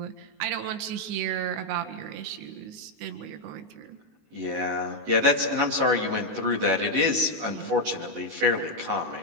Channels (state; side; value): late; left; 19 ms